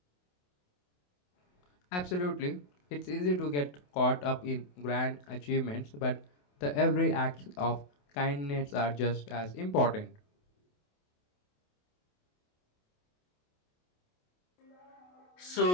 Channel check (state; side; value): late; right; 28 ms